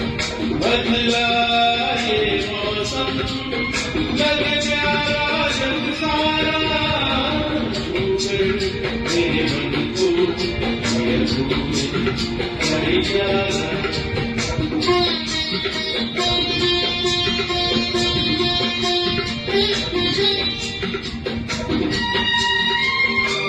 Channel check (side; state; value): both; identical; correlation 1.00